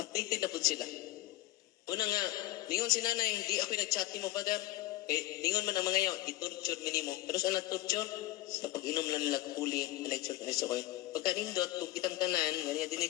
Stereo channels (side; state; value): right; quieter; 16.5 dB